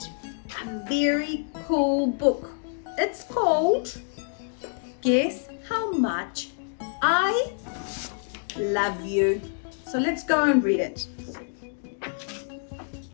a very cool book. It's called Guess How Much I Love You. So let's go and read it.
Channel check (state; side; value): silent; right; digital silence